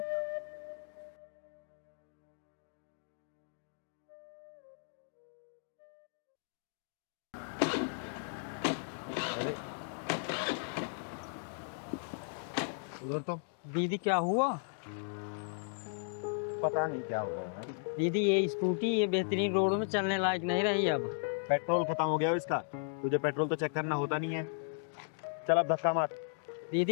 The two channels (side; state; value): right; silent; digital silence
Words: उधर तो दीदी क्या हुआ? पता नहीं क्या हुआ है। दीदी ये स्कूटी ये बेहतरीन रोड में चलने लायक नहीं रही अब। पेट्रोल खत्म हो गया है इसका, तुझे पेट्रोल तो चेक करना होता नहीं है। चल अब धक्का मार।